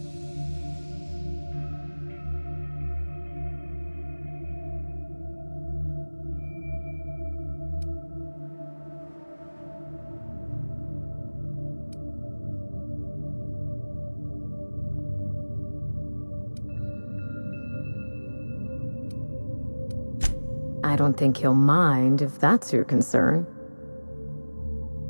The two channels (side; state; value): both; inverted; correlation -1.00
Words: I don't think he'll mind if that's your concern.